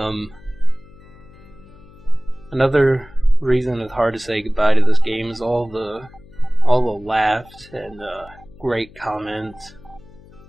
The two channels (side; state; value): left; noise; hum, 23 dB below the sound